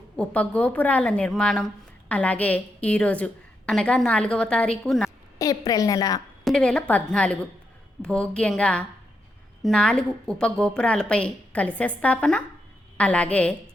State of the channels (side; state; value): both; normal; correlation 0.82